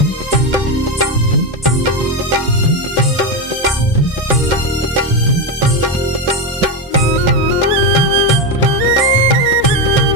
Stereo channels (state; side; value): normal; both; correlation 0.11